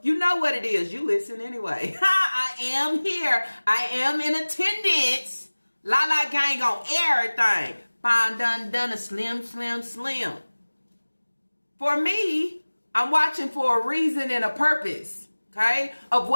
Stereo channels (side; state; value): both; inverted; correlation -1.00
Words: You know what it is. You listen anyway. I am here. I am in attendance. Lala gang on everything. Fine, done, a slim. For me, I'm watching for a reason and a purpose. Okay? Of